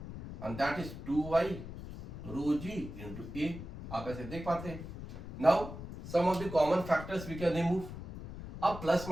and that is 2y rho g into a. आप ऐसे देख पाते हैं। Now some of the common factors we can remove. अब plus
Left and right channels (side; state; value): left; noise; rumble, 10 dB below the sound